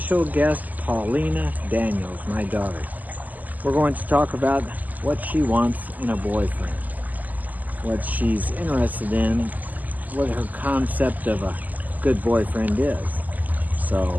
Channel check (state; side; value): late; left; 0.081 ms